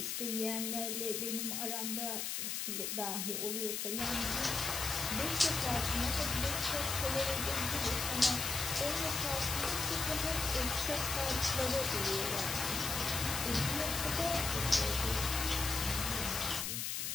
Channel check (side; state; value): left; noise; hiss, 2 dB below the sound